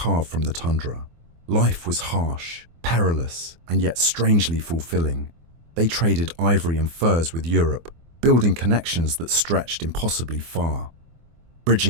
from the tundra. Life was harsh, perilous, and yet strangely fulfilling. They traded ivory and furs with Europe, building connections that stretched impossibly far,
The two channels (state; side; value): late; left; 24 ms